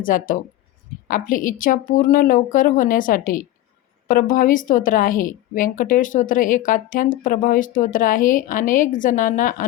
जातं. आपली इच्छा पूर्ण लवकर होण्यासाठी प्रभावी स्तोत्र आहे. व्यंकटेश स्तोत्र एक अत्यंत प्रभावी स्तोत्र आहे. अनेक जणांना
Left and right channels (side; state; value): right; quieter; 14.6 dB